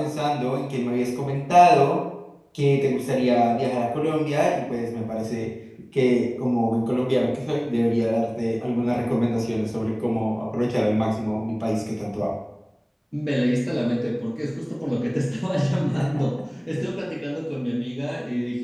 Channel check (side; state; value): both; identical; correlation 1.00